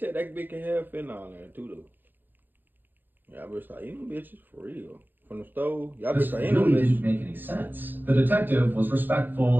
that bitch can have fentanyl in there too, though. Y'all better start eating them bitches for real. From the stove, y'all better start eating them bitches. This really didn't make any sense. The detective was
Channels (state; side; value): late; left; 0.090 ms